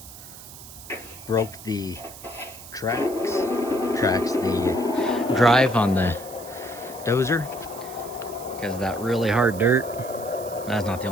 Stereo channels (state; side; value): noise; right; hiss, 16 dB below the sound